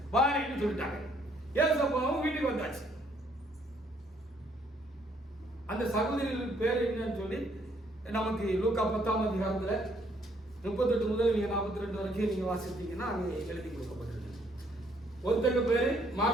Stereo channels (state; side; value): normal; both; correlation 0.67